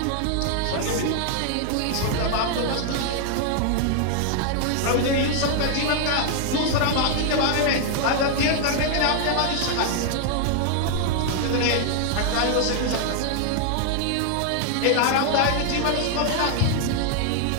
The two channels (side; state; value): both; different; correlation 0.00